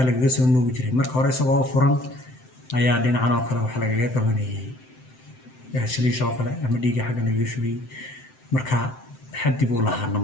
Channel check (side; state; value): right; late; 7.8 ms